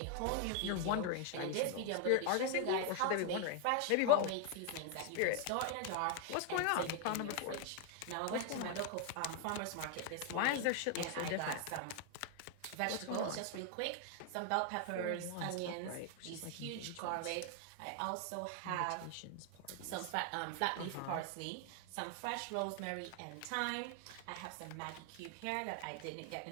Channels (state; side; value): different; both; correlation 0.00